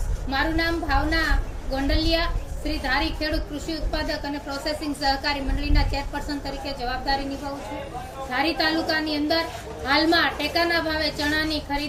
મારું નામ ભાવના ગોંડલિયા, શ્રી ધારી ખેડૂત કૃષિ ઉત્પાદક અને પ્રોસેસિંગ સહકારી મંડળીના ચેરપર્સન તરીકે જવાબદારી નિભાવું છું। ધારી તાલુકાની અંદર હાલમાં ટેકાના ભાવે ચણાની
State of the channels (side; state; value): both; identical; correlation 1.00